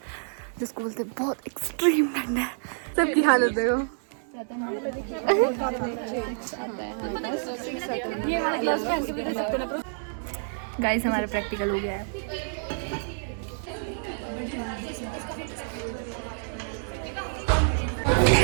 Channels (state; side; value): silent; left; digital silence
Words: जिसको बोलते हैं बहुत एक्सट्रीम ठंड है। सबकी हालत देखो। गाइस हमारा प्रैक्टिकल हो गया है।